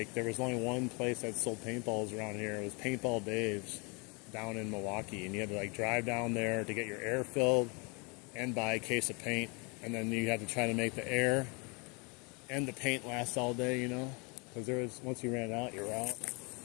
there was only one place that sold paintballs around here. It was Paintball Dave's down in Milwaukee, and you had to, like, drive down there to get your air filled and buy a case of paint, and then you had to try to make the air and the paint last all day, you know, because once you ran out, you're out.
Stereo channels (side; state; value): right; quieter; 31.5 dB